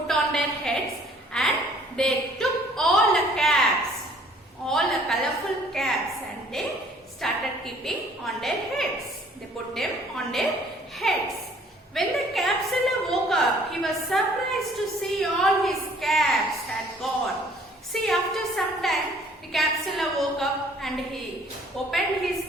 on their heads, and they took all the caps, all the colorful caps, and they started keeping on their heads. They put them on their heads. When the capsular woke up, he was surprised to see all his caps had gone. See, after some time, the capsular woke up and he opened his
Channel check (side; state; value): both; normal; correlation 0.57